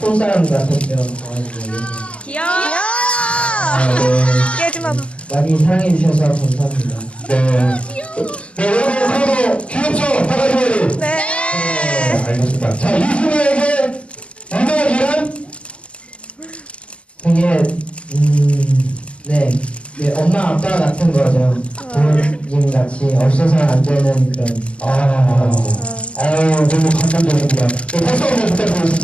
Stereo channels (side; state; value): right; late; 0.060 ms